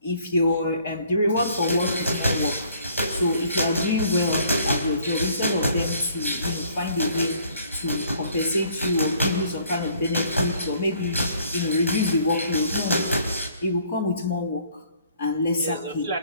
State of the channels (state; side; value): inverted; both; correlation -0.60